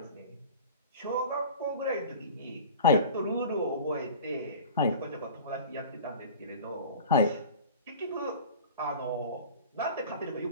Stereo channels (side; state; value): both; inverted; correlation -0.39